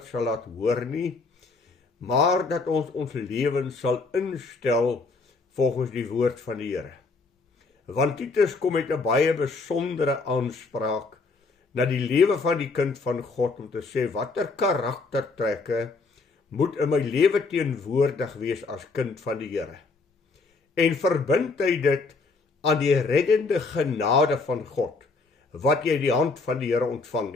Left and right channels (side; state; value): right; quieter; 4.0 dB